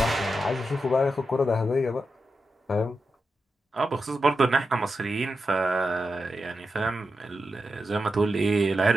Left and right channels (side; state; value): both; normal; correlation 0.88